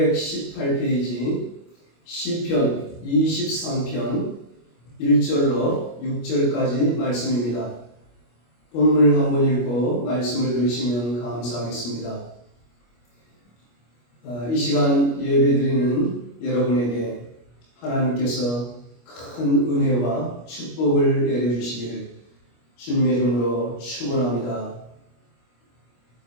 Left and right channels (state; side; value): late; right; 25 ms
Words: 시편 23편 1절로 6절까지 말씀입니다. 본문을 한번 읽고 말씀을 들으시면 감사하겠습니다. 이 시간 예배드리는 여러분에게 하나님께서 큰 은혜와 축복을 내려주시기를 주님의 이름으로 축원합니다.